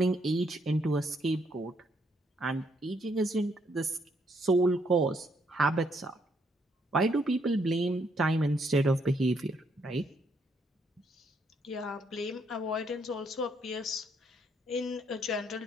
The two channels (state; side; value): normal; both; correlation 0.72